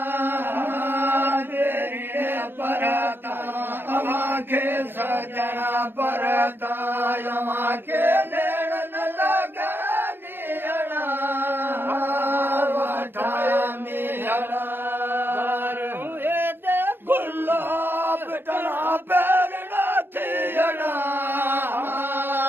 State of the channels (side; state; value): left; late; 0.10 ms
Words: तेरे परता अमाखे सजना परता अमाखे नैणन लगा नीहड़ा ठाणीहड़ा गुलाब टना पैरना थियड़ा